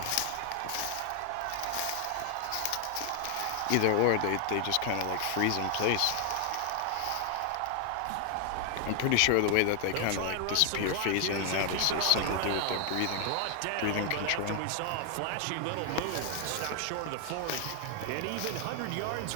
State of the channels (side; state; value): both; different; correlation 0.00